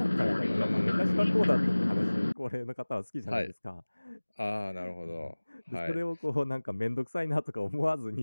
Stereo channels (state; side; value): inverted; both; correlation -1.00